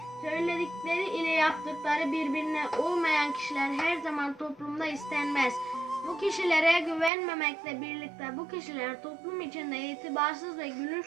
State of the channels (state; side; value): drops out; left; at 7.1 s